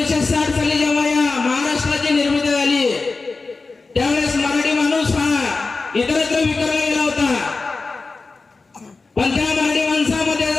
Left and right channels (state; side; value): quieter; right; 3.9 dB